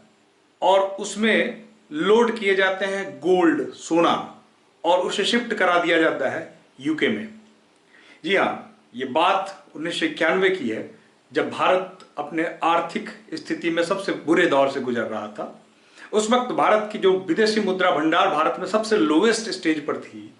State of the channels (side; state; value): both; identical; correlation 1.00